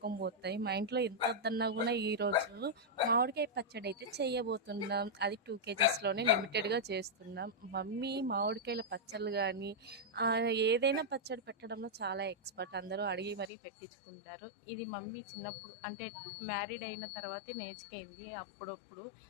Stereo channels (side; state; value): right; drops out; at 13.5 s